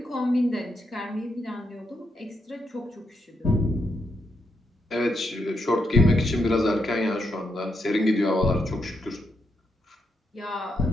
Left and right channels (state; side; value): normal; both; correlation 0.80